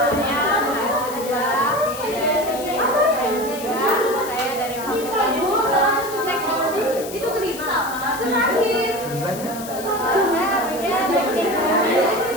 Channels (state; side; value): noise; left; hiss, 12 dB below the sound